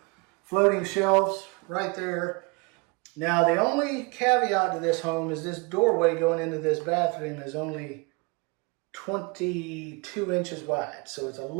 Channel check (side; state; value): left; quieter; 29.7 dB